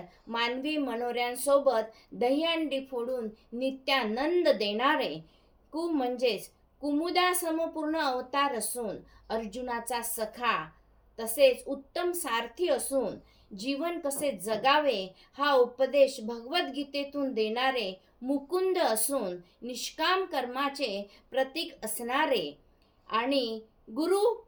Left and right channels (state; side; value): identical; both; correlation 1.00